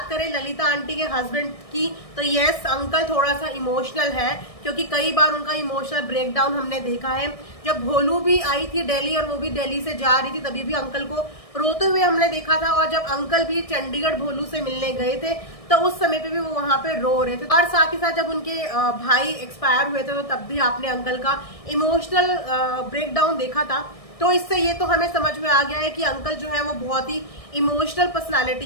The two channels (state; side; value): late; right; 1.6 ms